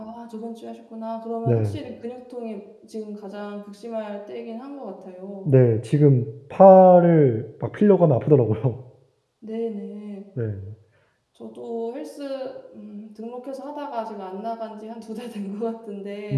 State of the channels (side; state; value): both; identical; correlation 1.00